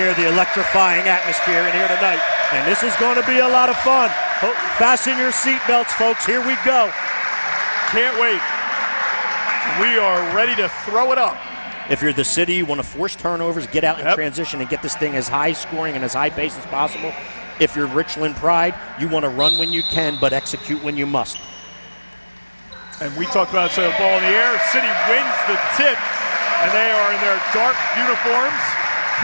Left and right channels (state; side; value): inverted; both; correlation -1.00